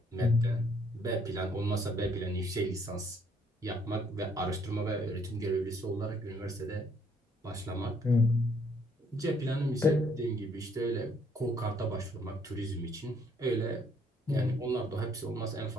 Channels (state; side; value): normal; both; correlation 0.66